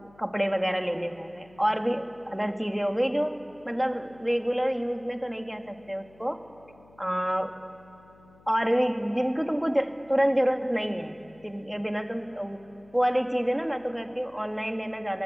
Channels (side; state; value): left; noise; hum, 27 dB below the sound